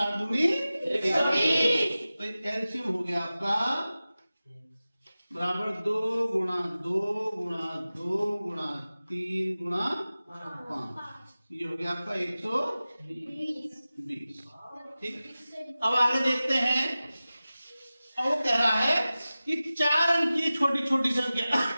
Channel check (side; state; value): both; inverted; correlation -0.96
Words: दूनी 120। तो एलसीएम हो गया आपका बराबर 2 गुणा 2 गुणा 2 गुणा 3 गुणा 5। ये हो गया आपका 120। ठीक, अब आगे देखते हैं। अब वो कह रहा है कि 4 अंक की छोटी छोटी संख्या